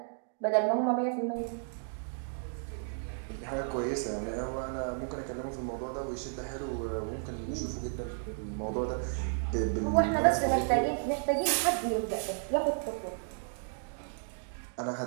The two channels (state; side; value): silent; left; digital silence